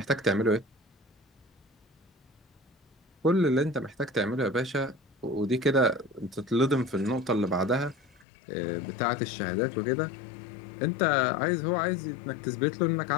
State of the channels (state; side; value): drops out; right; at 8.2 s